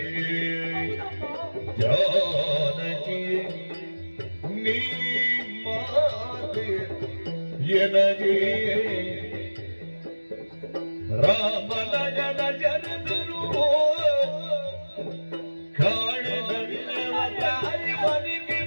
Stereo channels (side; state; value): both; inverted; correlation -1.00